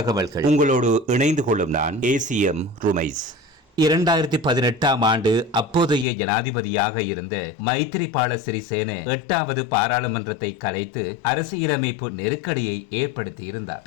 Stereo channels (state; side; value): drops out; right; at 6.1 s